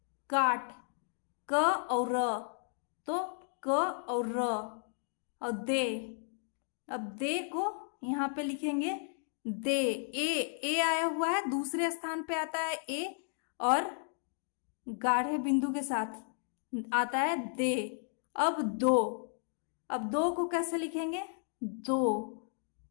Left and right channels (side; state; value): right; silent; 55 dB below the other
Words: काट, क और र, तो क और र, और दे। अब दे को यहाँ पे लिखेंगे दे। ए आया हुआ है, दूसरे स्थान पे आता है ए, और गाढ़े बिंदु के साथ आता है दे। अब दो, अब दो को कैसे लिखेंगे? दो,